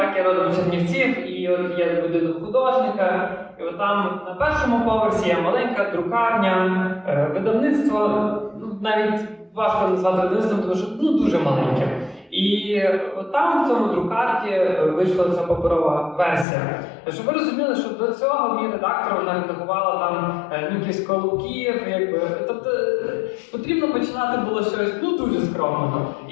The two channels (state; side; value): drops out; right; at 16.4 s